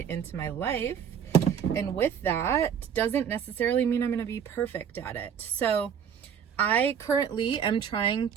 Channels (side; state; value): left; quieter; 8.0 dB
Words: into my life. And with that, doesn't necessarily mean I'm going to be perfect at it. So I currently am trying